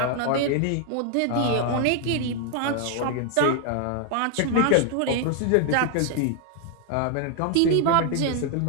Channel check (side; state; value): both; different; correlation 0.00